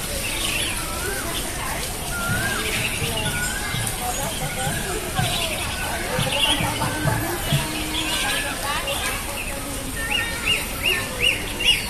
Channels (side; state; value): both; identical; correlation 1.00